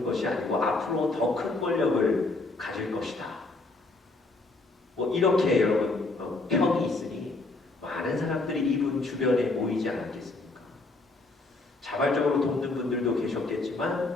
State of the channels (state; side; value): quieter; right; 3.3 dB